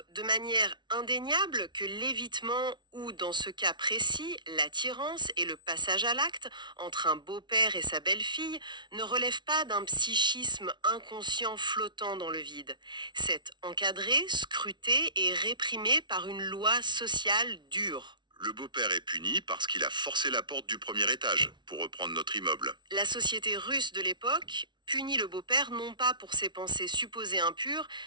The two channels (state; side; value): late; left; 0.22 ms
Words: de manière indéniable que l'évitement ou, dans ce cas précis, l'attirance et le passage à l'acte entre un beau-père et sa belle-fille ne relèvent pas d'un psychisme inconscient flottant dans le vide. C'est encadré, scruté et réprimé par une loi sociale dure. Le beau-père est puni parce qu'il a forcé la porte du premier étage, pour reprendre notre immeuble. La société russe de l'époque punit le beau-père non pas pour ses pensées supposées impures,